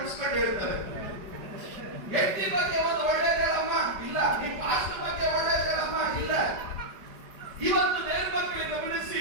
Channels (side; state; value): left; late; 5.1 ms